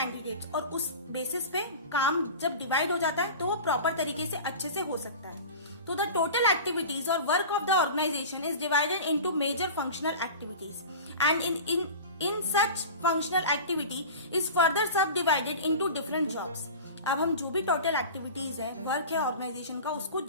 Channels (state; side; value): inverted; both; correlation -0.34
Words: और उस बेसिस पे काम जब डिवाइड हो जाता है तो वो प्रॉपर तरीके से अच्छे से हो सकता है। तो द टोटल एक्टिविटीज और work of the organisation is divided into major functional activities and in such functional activity is further subdivided into different jobs। अब हम जो भी टोटल एक्टिविटीज है, वर्क है ऑर्गेनाइजेशन का, उसको